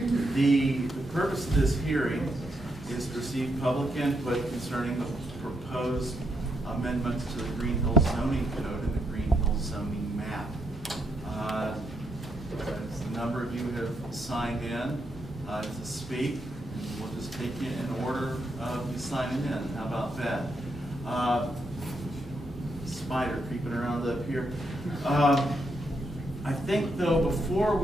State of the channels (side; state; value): both; normal; correlation 0.78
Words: The purpose of this hearing is to receive public input concerning the proposed amendments to the Greenhills zoning code and the Greenhills zoning map. A number of you have signed in to speak, and we'll just take you in order of you signing in. How about that? Spider creeping around up here. I think, though, before